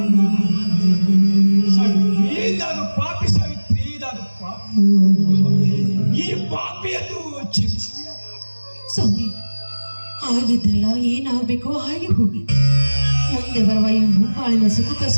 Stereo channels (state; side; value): inverted; both; correlation -1.00